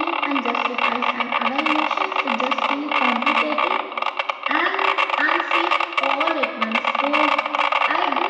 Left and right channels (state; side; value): identical; both; correlation 1.00